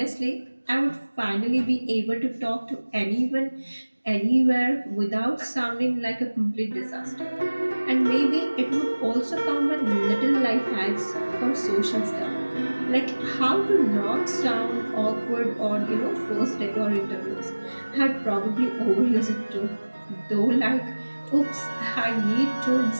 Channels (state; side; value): inverted; both; correlation -1.00